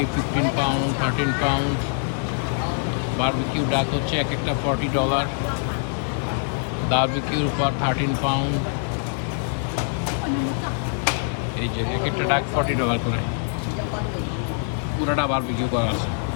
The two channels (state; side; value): silent; right; 58 dB below the other